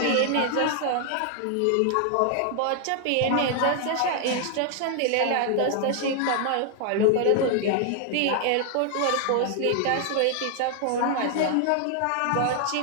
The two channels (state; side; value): different; both; correlation 0.00